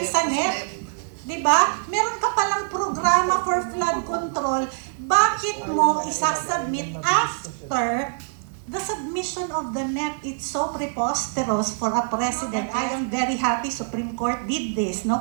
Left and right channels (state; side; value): silent; left; digital silence